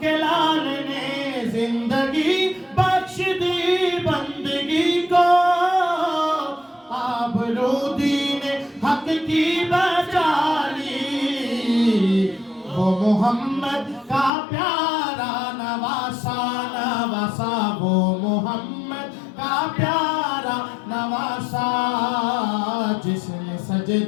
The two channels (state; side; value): drops out; right; at 14.3 s